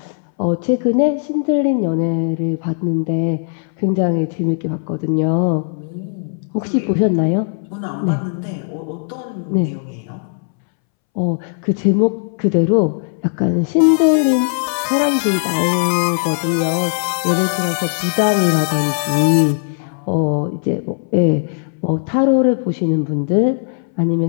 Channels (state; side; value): silent; right; 65 dB below the other